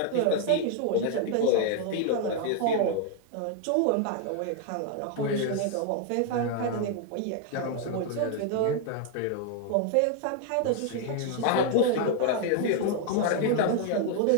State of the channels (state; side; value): different; both; correlation 0.00